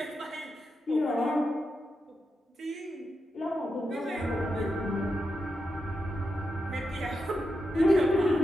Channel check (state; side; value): normal; both; correlation 0.87